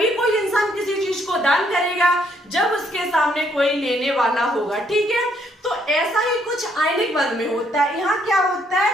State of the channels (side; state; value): both; normal; correlation 0.70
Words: कोई इंसान किसी चीज को दान करेगा जब उसके सामने कोई लेने वाला होगा। ठीक है, तो ऐसा ही कुछ आयनिक बंध में होता है। यहाँ क्या होता है